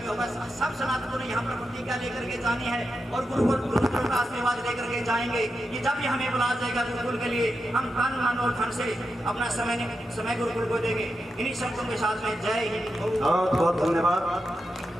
होगा, सब सनातनों ने यहाँ पर प्रतिज्ञा लेकर के जानी है और गुरुकुल का आशीर्वाद लेकर के जाएंगे कि जब भी हमें बुलाया जाएगा गुरुकुल के लिए, हम तन मन और धन से अपना समय गुरुकुल को देंगे। इन्हीं शब्दों के साथ में जय हिंद। बहुत बहुत धन्यवाद।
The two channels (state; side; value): normal; both; correlation 0.88